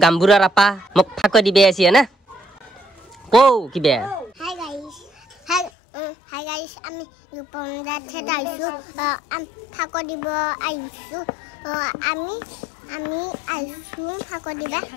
গাম্বুৰাৰ আপা মুখ ফাক দিবে আছে না কো কিবে Hi guys, আমি রূপমদা থেকে আইছো ফাক দিব আইছো আমি আইছো ফাক দিবা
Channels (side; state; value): right; drops out; at 5.7 s